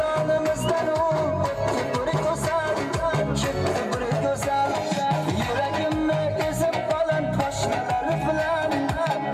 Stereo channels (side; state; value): both; identical; correlation 1.00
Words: u o'tdi bir go'zal, ketdi bir go'zal, yuragimni ezib baland poshnalar bilan